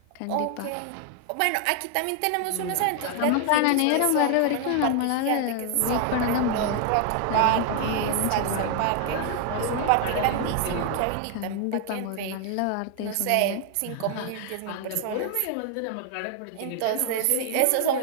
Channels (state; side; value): different; both; correlation 0.00